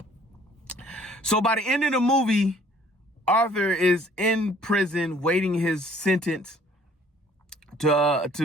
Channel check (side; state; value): both; normal; correlation 0.57